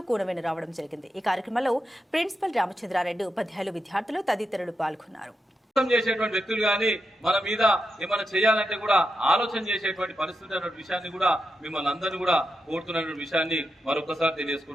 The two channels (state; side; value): normal; both; correlation 0.86